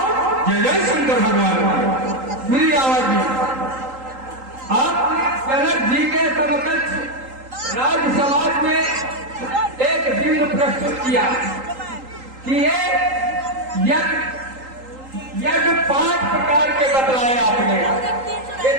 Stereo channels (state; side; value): late; left; 3.8 ms